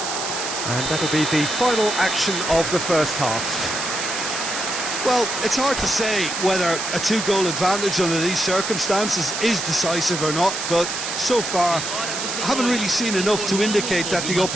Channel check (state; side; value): noise; right; hiss, 4 dB below the sound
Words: And that'll be the final action of the first half. Well, it's hard to say whether a 2-goal advantage under these circumstances is decisive or not, but so far I haven't really seen enough to indicate that the